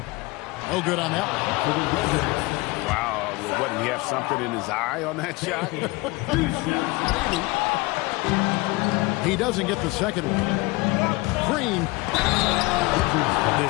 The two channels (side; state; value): right; quieter; 23.2 dB